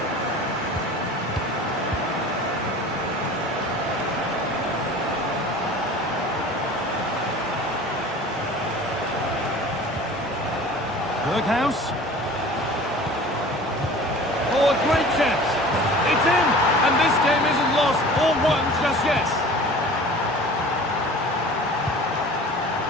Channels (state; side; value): normal; both; correlation 0.42